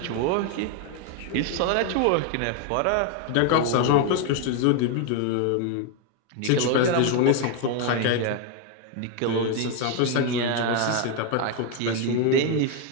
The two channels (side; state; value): both; different; correlation 0.01